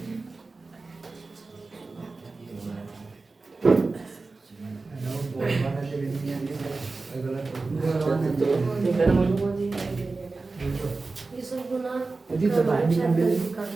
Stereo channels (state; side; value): quieter; left; 3.7 dB